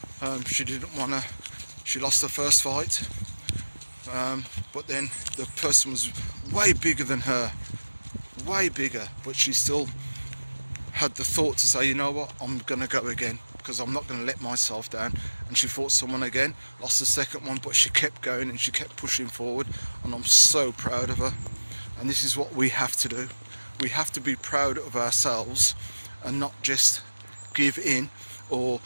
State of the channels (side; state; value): both; inverted; correlation -1.00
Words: She lost the first fight, but then the person was way bigger than her, way bigger, but she still had the thought to say, you know what, I'm going to go again, because I'm not going to let myself down. And she fought someone again, lost the second one, but she kept going and she kept pushing forward, and I'm so proud of her. And this is what we have to do. We have to be proud of ourselves and not just give in or